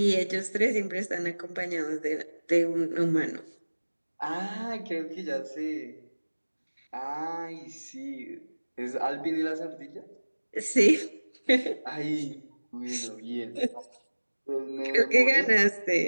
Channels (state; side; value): inverted; both; correlation -1.00